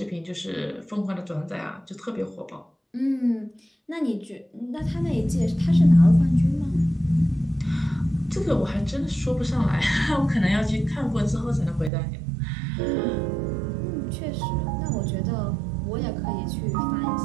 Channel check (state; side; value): drops out; left; at 11.9 s